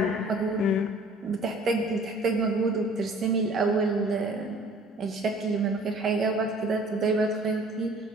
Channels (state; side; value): normal; both; correlation 0.51